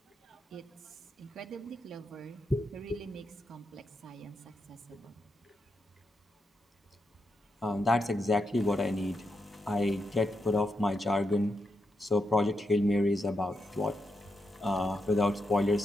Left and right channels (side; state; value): both; normal; correlation 0.84